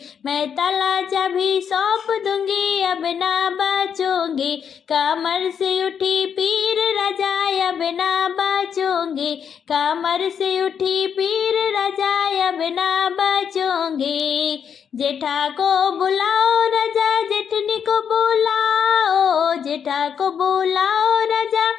मैं ताला चाबी सौंप दूंगी अब ना बचूंगी। कमर से उठी पीर राजा अब ना बचूंगी, कमर से उठी पीर राजा अब ना बचूंगी। जेठा को बुलाओ राजा जेठनी को बुलाओ, जेठा को बुलाओ राजा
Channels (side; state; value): right; quieter; 7.6 dB